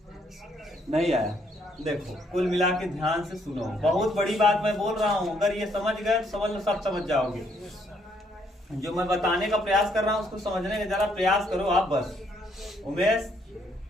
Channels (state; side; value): normal; both; correlation 0.70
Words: नहीं आया, देखो कुल मिला के ध्यान से सुनो, बहुत बड़ी बात मैं बोल रहा हूँ, अगर ये समझ गए तो समझ लो सब समझ जाओगे। जो मैं बताने का प्रयास कर रहा हूँ उसको समझने का जरा प्रयास करो आप बस। उमेश